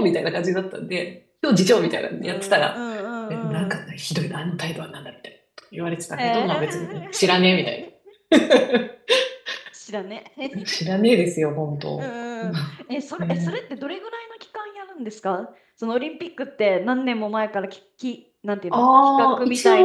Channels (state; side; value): identical; both; correlation 1.00